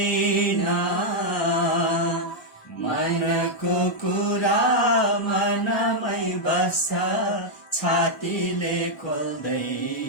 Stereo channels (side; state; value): right; late; 1.3 ms